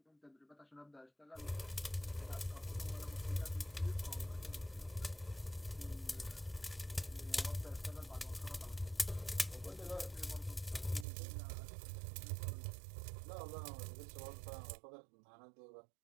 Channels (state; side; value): drops out; left; at 11.1 s